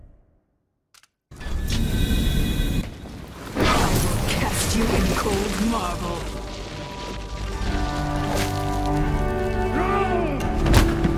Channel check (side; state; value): both; identical; correlation 1.00